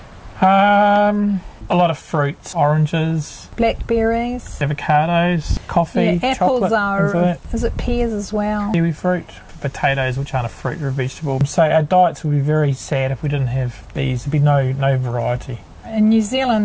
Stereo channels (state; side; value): identical; both; correlation 1.00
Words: A lot of fruits, oranges, blackberries, avocados, coffee, apples chocolate, is it pears as well? kiwi fruit, potatoes, which aren't a fruit or a vegetable. So our diets would be very sad if we didn't have bees. There'd be no variety. In New